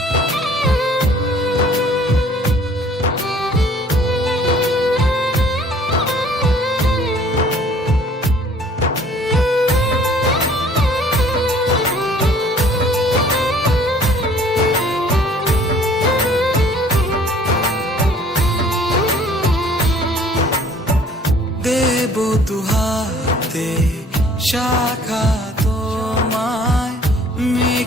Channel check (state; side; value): normal; both; correlation 0.55